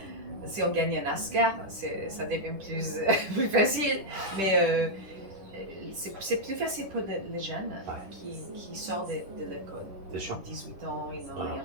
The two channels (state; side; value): late; left; 10 ms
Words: si on gagne un Oscar, ça devient plus facile. Mais c'est plus facile pour les jeunes qui sortent de l'école. Bien sûr. 18 ans, ils n'ont rien